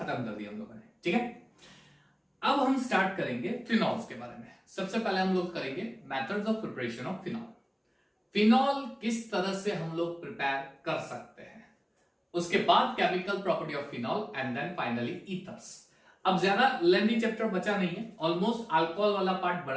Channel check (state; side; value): identical; both; correlation 1.00